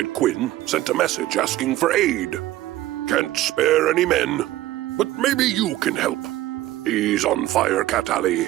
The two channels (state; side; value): quieter; left; 15.3 dB